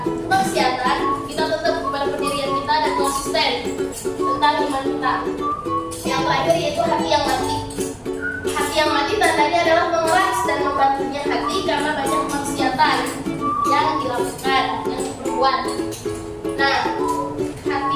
kemaksiatan, kita tetap kepada pendirian kita dan konsisten tentang iman kita. Yang terakhir yaitu hati yang mati. Hati yang mati tandanya adalah mengeras dan membantunya hati karena banyak kemaksiatan yang dilakukan, yang diperbuat. Nah, hati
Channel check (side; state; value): both; identical; correlation 1.00